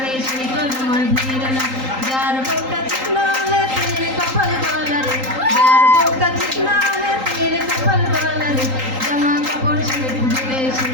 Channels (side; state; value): left; late; 3.8 ms